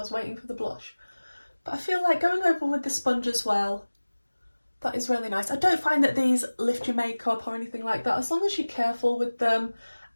was waiting for the blush. But I feel like going over with the sponge as well, that is really nice. I don't find that these lift your makeup or anything like that, as long as you're careful with them.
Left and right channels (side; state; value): both; inverted; correlation -1.00